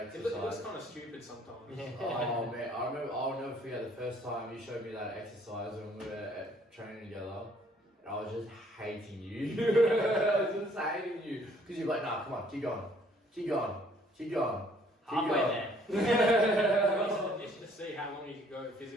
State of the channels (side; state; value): both; normal; correlation 0.61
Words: exercise. looks kind of stupid sometimes. Oh man, I'll never forget the first time you showed me that exercise when we were training together. And I was just hating you. I was just hating you. Because you're like, nah, come on, keep going. halfway there? Just to see how long you can go